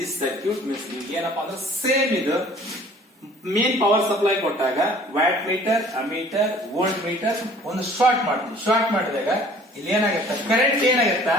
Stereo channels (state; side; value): normal; both; correlation 0.52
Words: circuit means ನಿಮ್ಗೆ ಏನಪ್ಪಾ ಅಂದ್ರೆ same ಇದು main power supply ಕೊಟ್ಟಾಗ watt meter, ammeter, volt metre ಒಂದು short ಮಾಡ್ತೀವಿ. Short ಮಾಡಿದಾಗ ಇಲ್ಲಿ ಏನಾಗುತ್ತೆ, ಕರೆಂಟ್ ಏನಾಗುತ್ತಾ